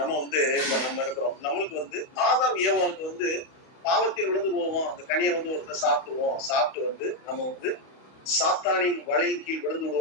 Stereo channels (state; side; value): late; right; 31 ms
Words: இருக்கிறோம். நம்மளுக்கு ஆதாம் ஏவாளுக்கு பாவத்தில் விழுந்து போவோம். அந்த கனியை ஒருத்தர் சாப்பிடுவோம். சாப்பிட்டு நம்ம சாத்தானின் வலையின் கீழ் விழுந்து